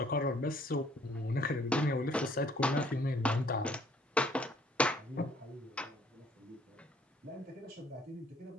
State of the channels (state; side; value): normal; both; correlation 0.61